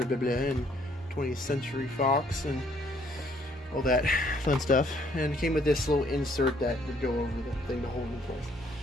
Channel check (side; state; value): both; normal; correlation 0.65